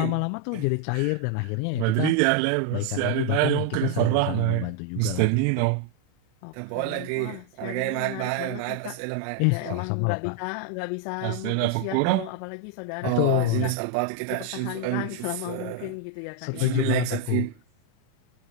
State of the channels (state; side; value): different; both; correlation 0.00